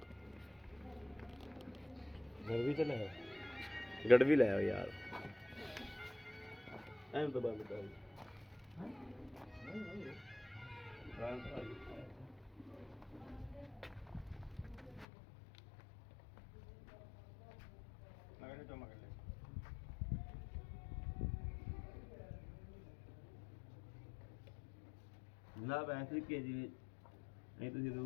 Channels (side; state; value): right; drops out; at 15.1 s